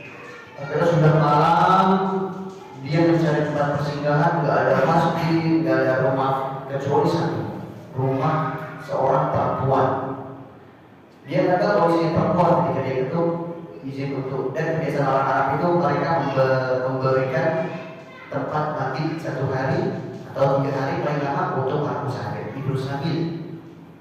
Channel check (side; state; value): both; identical; correlation 1.00